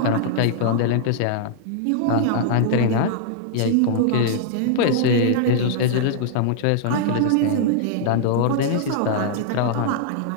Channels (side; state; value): both; different; correlation -0.01